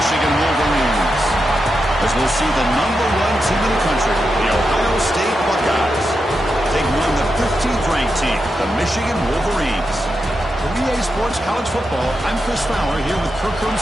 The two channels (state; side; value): normal; both; correlation 0.87